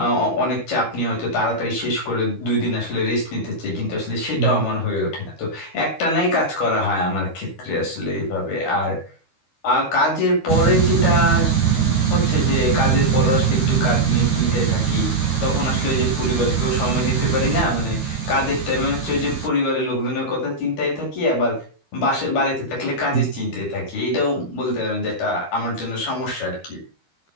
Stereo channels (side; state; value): right; late; 13 ms